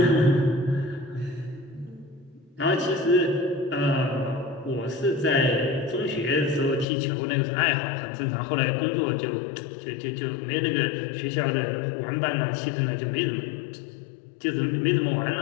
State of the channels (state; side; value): drops out; right; at 6.9 s